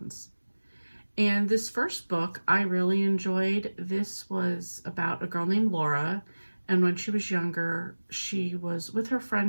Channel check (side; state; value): both; inverted; correlation -1.00